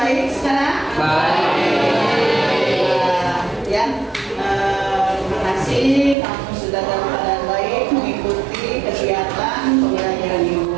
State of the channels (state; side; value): drops out; left; at 6.2 s